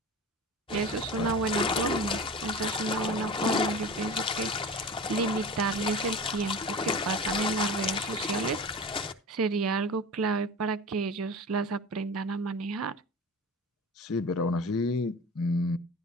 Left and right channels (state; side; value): normal; both; correlation 0.34